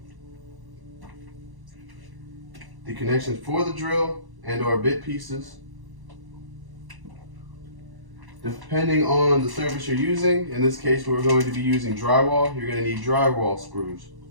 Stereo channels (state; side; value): late; left; 1.1 ms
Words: the connections for the drill and or bit pieces. Depending on the surface you're using, in this case we're going to be using drywall, you're going to need drywall screws